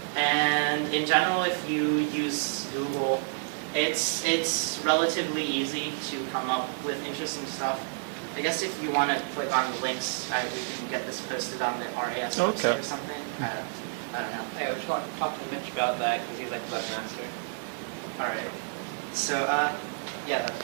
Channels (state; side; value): silent; left; 58 dB below the other